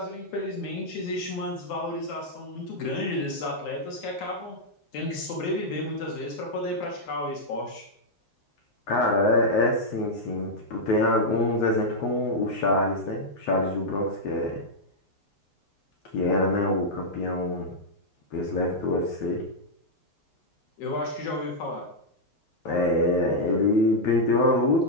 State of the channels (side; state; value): right; late; 9.6 ms